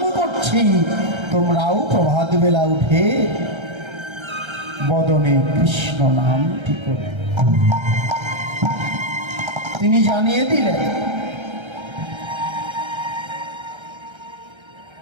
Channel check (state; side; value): late; left; 1.3 ms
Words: করছি, তোমরাও প্রভাত বেলা উঠে বদনে কৃষ্ণ নামটি করে। তিনি জানিয়ে দিলেন